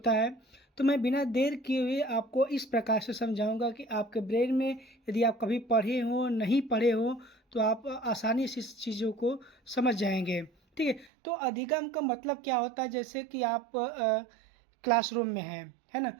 है। तो मैं बिना देर किए हुए आपको इस प्रकार से समझाऊंगा कि आपके ब्रेन में यदि आप कभी पढ़े हो नहीं पढ़े हो तो आप आसानी से इस चीज़ों को समझ जाएंगे। ठीक है, तो अधिगम का मतलब क्या होता है? जैसे कि आप क्लासरूम में हैं, है ना।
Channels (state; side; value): drops out; left; at 11.1 s